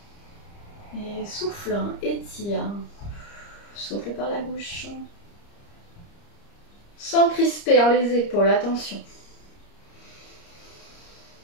Et souffle, étire. Souffle par la bouche. Sans crisper les épaules, attention.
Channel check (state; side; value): late; right; 30 ms